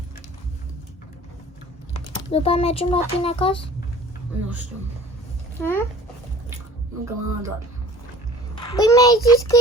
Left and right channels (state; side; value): normal; both; correlation 0.46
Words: După aia mergem la tine acasă? Nu știu. Încă mama doar. Păi mi-ai zis că